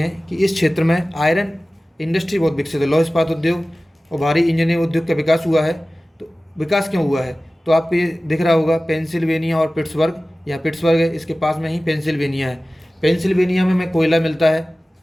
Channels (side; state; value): both; normal; correlation 0.97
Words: कि इस क्षेत्र में आयरन इंडस्ट्री बहुत विकसित है। लौह इस्पात उद्योग और भारी इंजीनियरिंग उद्योग का विकास हुआ है। तो विकास क्यों हुआ है? तो आपको ये दिख रहा होगा पेंसिल्वेनिया और पिट्सबर्ग। यहाँ पिट्सबर्ग है, इसके पास में ही पेंसिल्वेनिया है। पेंसिल्वेनिया में कोयला मिलता है,